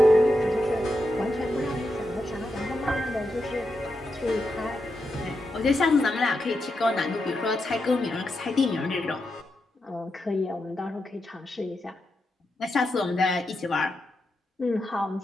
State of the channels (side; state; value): both; normal; correlation 0.86